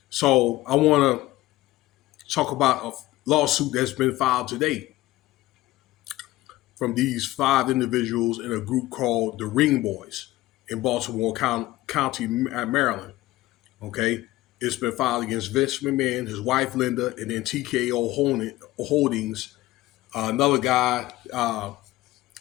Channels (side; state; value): right; quieter; 17.3 dB